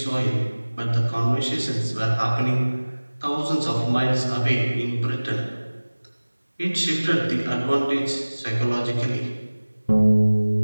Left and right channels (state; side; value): inverted; both; correlation -1.00